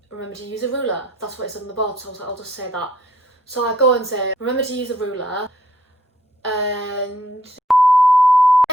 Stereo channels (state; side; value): normal; both; correlation 0.67